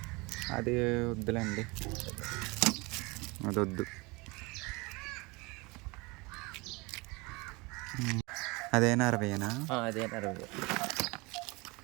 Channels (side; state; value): left; quieter; 25.7 dB